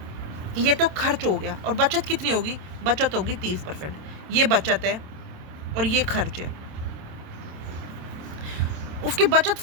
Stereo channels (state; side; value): late; left; 27 ms